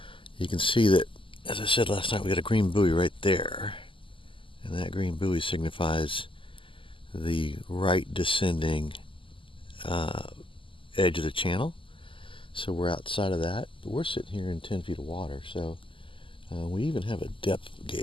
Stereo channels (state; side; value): late; right; 0.25 ms